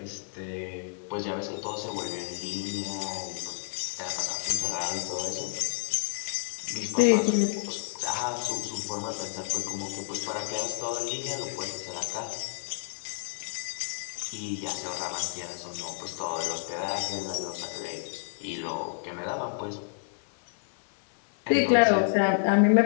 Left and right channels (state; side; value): silent; right; 58 dB below the other